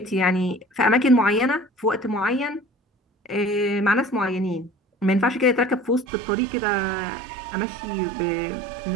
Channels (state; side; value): drops out; left; at 6.1 s